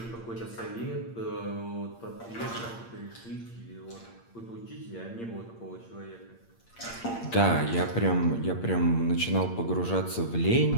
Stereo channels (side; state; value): right; late; 8.7 ms